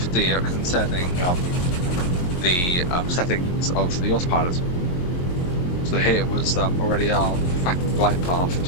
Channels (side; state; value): right; late; 22 ms